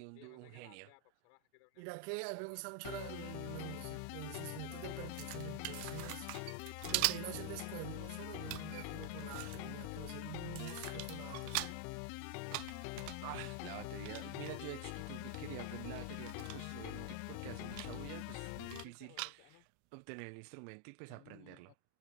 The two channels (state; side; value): different; both; correlation 0.00